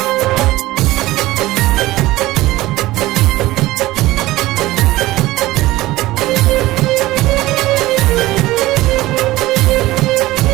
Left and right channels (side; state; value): left; quieter; 17.8 dB